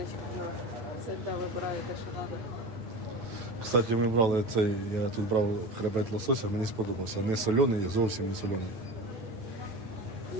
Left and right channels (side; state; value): left; late; 9.1 ms